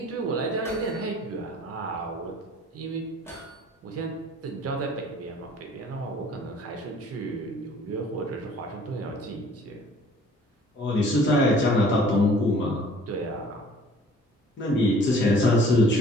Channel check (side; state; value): both; normal; correlation 0.52